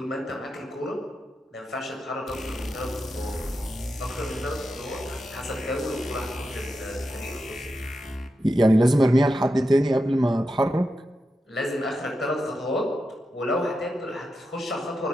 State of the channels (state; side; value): normal; both; correlation 0.88